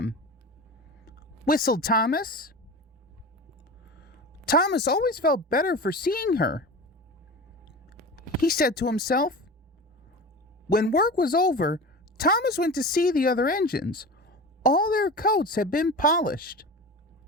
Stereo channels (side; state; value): both; normal; correlation 0.31